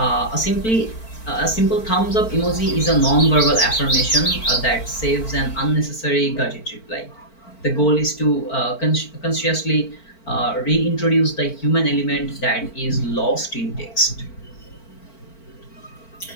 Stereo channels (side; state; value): right; late; 4.5 ms